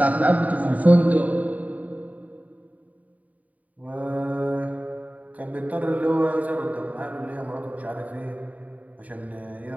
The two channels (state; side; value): late; left; 0.072 ms